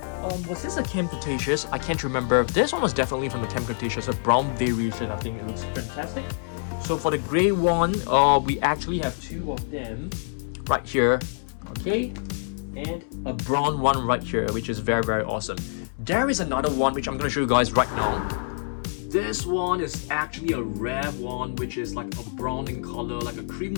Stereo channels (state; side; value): silent; right; digital silence